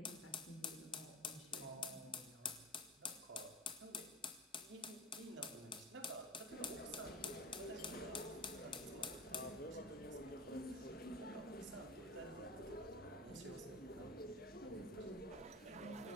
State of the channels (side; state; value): both; normal; correlation 0.30